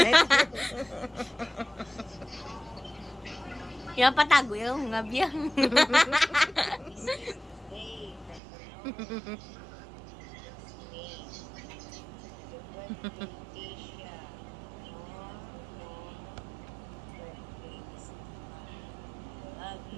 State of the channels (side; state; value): left; drops out; at 8.4 s